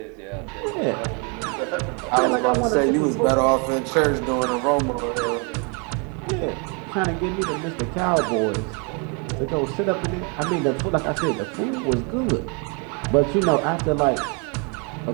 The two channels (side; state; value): left; quieter; 35.1 dB